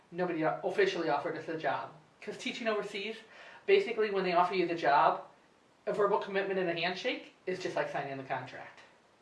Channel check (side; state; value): both; identical; correlation 1.00